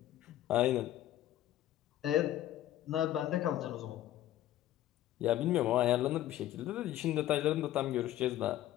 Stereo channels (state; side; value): quieter; right; 13.3 dB